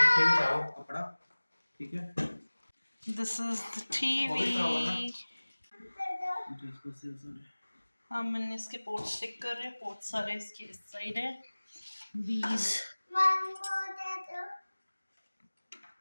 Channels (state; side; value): inverted; both; correlation -1.00